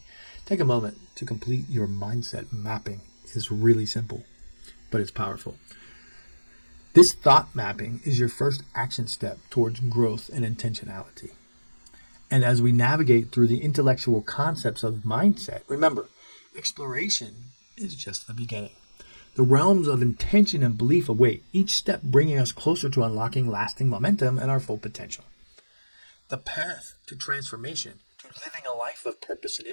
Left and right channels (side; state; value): both; inverted; correlation -1.00